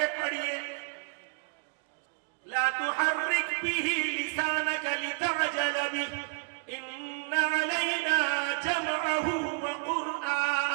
پڑھیے. لا تحرك به لسانك لتعجل به إن علينا جمعه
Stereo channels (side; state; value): left; quieter; 37.3 dB